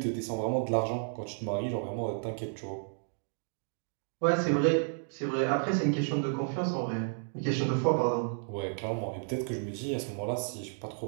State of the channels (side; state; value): left; silent; digital silence